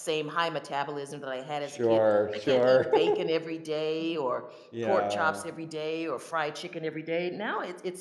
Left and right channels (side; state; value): both; identical; correlation 1.00